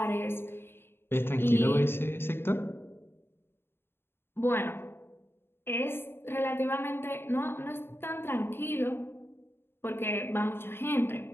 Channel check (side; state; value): right; late; 0.11 ms